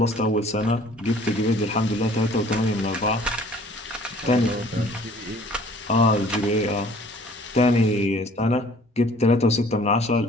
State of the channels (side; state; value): both; normal; correlation 0.53